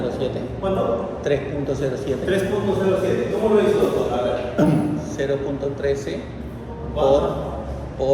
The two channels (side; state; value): both; identical; correlation 1.00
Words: ¿Cuánto? 3.07. 3.07. ¿Cómo lo hizo, doctor? A ver. 0.13